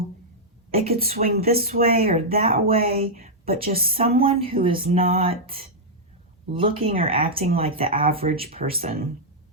it could swing this way or that way, but just someone who is not looking or acting like the average person.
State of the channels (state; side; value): normal; both; correlation -0.07